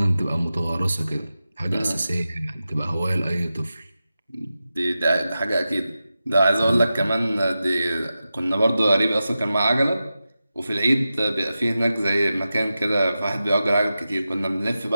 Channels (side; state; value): both; inverted; correlation -0.92